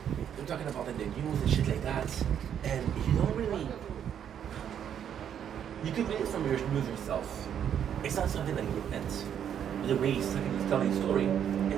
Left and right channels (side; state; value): left; quieter; 9.1 dB